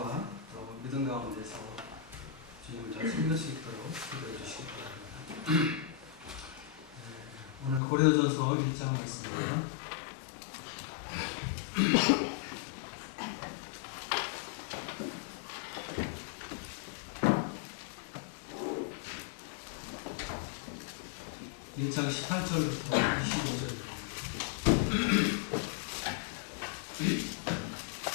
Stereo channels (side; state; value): right; drops out; at 7.8 s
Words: 또 믿음 가운데서 주님을 잘 섬길 수 있도록 기도해 주시기 바랍니다. 오늘 고린도전서 1장 말씀입니다. (1장) 18절부터 25절입니다.